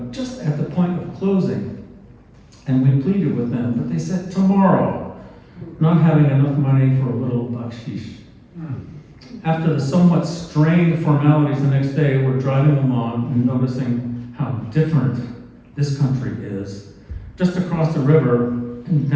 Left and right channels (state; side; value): identical; both; correlation 1.00